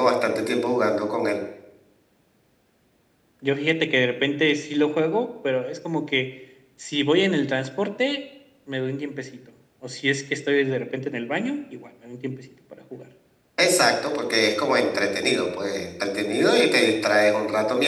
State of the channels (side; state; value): both; identical; correlation 1.00